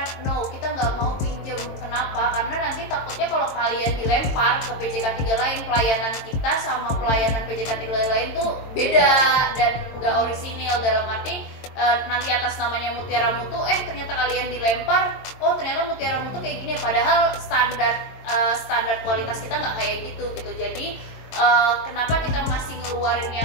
No, kita nggak mau pinjem. Kenapa? Karena nanti takutnya kalau kalian dilempar ke PJK 3 lain, pelayanan kita sama pelayanan PJK 3 lain tuh beda dan nggak orisinil, dalam arti nanti atas namanya Mutiara Mutu, ternyata kalian dilempar, oh ternyata Mutiara Mutu kayak gini, padahal standar kualitas kita nggak kayak gitu. Jadi kenapa kita masih ngeluarin yang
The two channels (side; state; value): right; late; 22 ms